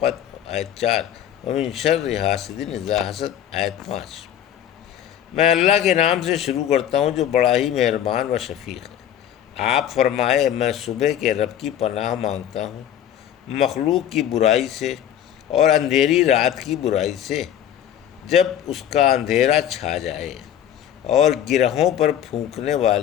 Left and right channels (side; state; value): right; quieter; 10.4 dB